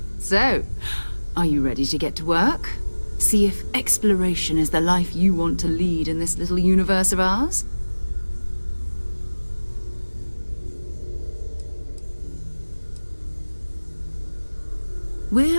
So, are you ready to get to work? See if exploration is the life you want to lead in this little universe of ours?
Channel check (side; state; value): both; inverted; correlation -1.00